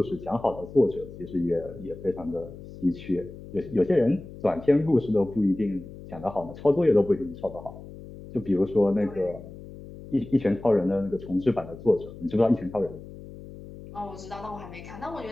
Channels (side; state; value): left; noise; hum, 15 dB below the sound